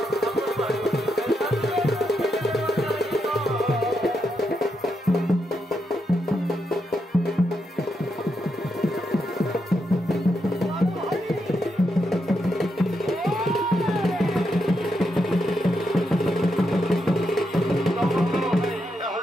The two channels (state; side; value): normal; both; correlation 0.82